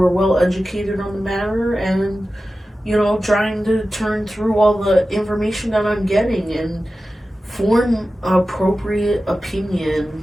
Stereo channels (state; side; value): normal; both; correlation 0.94